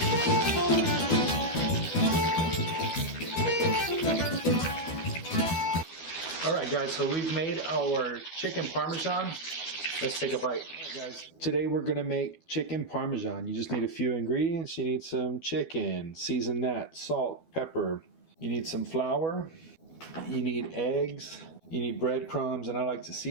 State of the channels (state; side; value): late; right; 12 ms